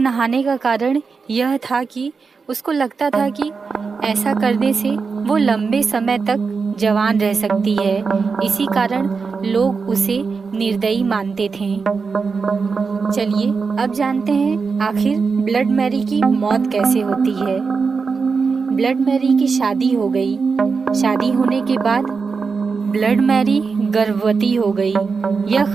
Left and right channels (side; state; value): left; quieter; 5.0 dB